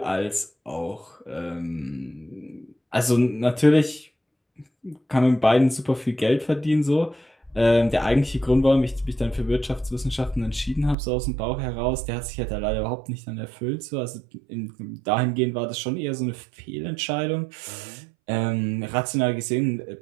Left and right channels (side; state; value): left; drops out; at 11.0 s